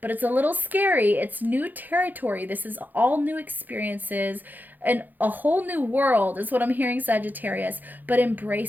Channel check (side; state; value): left; late; 0.085 ms